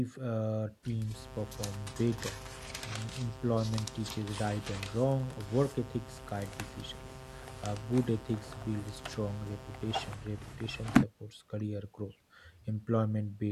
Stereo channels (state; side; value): identical; both; correlation 1.00